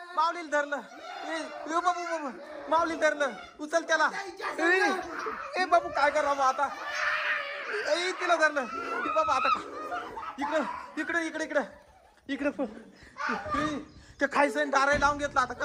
धरलं. बाबू माऊली धरलं. उचल त्याला. बाबू काय करावं आता. तिला धरलं. बाबा आता इकडे ते खायचं दाराही लावून घेतलं. आता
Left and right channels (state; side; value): identical; both; correlation 1.00